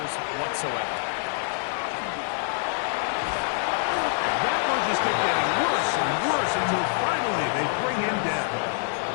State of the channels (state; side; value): silent; right; 61 dB below the other